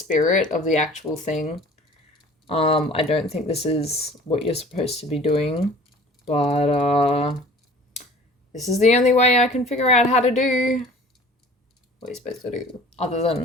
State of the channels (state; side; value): normal; both; correlation 0.47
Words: of the actual thing. I don't think this is what you're supposed to be doing, but this is the only way I can figure out how to do what you're supposed to do, other